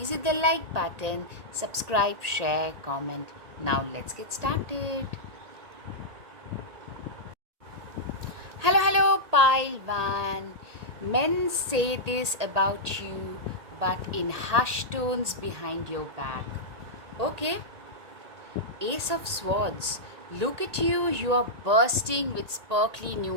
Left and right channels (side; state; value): left; late; 1.8 ms